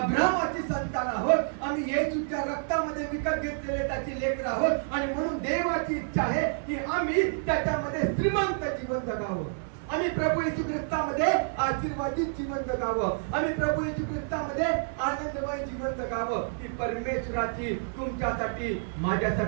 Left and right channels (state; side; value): silent; left; digital silence